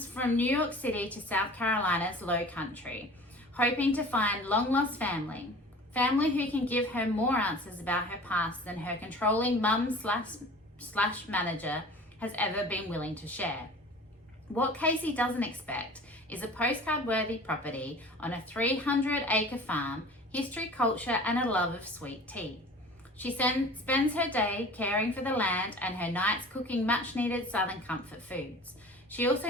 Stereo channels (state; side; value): normal; both; correlation 0.42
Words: from New York City to South Carolina's low country, hoping to find long-lost family who can give her more answers about her past than her controlling mum slash manager has ever been willing to share. What Casey doesn't expect is a postcard-worthy property on a 300-acre farm, history, culture, and a love of sweet tea. She spends her day caring for the land and her nights cooking much-needed Southern comfort foods. She